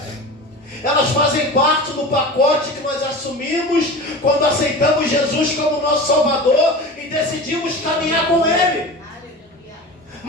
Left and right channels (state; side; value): normal; both; correlation 0.32